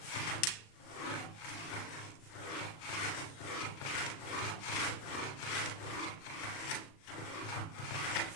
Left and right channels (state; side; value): late; right; 37 ms